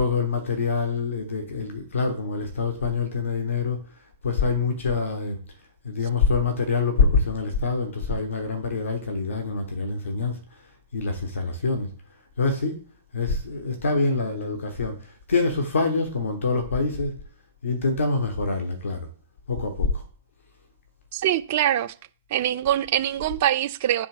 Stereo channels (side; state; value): both; inverted; correlation -0.47